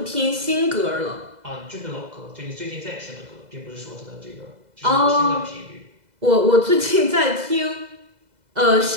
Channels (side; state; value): left; late; 2.0 ms